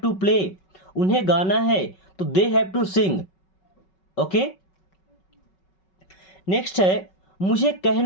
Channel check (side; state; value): right; late; 5.3 ms